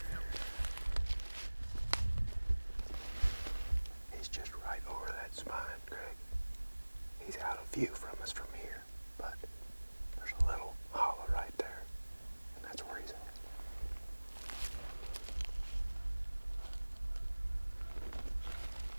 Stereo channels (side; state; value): both; inverted; correlation -1.00